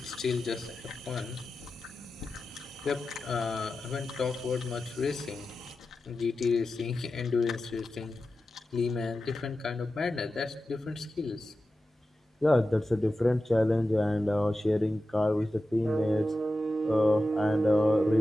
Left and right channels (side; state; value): both; normal; correlation 0.92